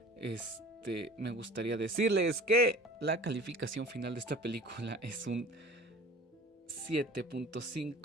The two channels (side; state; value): both; normal; correlation 0.43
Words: me gustaría decirles que la calificación final de esta película es un